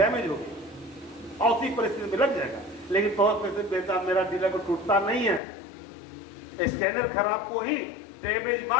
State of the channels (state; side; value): drops out; right; at 5.4 s